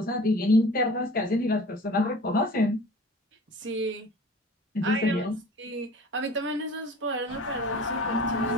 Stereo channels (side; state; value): both; normal; correlation 0.42